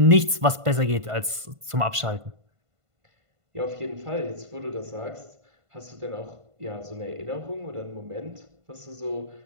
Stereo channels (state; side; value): late; left; 1.5 ms